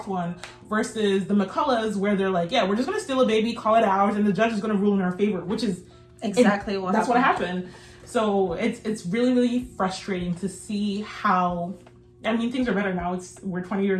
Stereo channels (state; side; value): identical; both; correlation 1.00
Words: one, versus the McCulloughs, where they're like, yeah, we're just going to steal a baby, call it ours, and the judge is going to rule in our favor, which is exactly what that's what happened. So it's really, really frustrating to see how, I mean, things are better now. We're 20